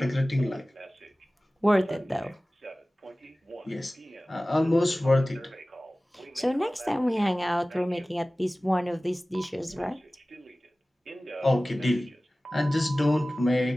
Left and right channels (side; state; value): both; normal; correlation 0.97